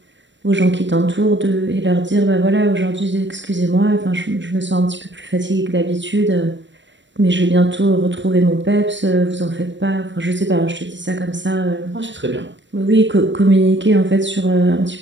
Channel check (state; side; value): late; left; 0.53 ms